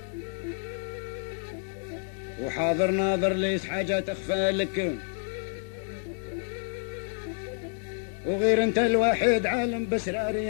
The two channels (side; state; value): right; silent; 59 dB below the other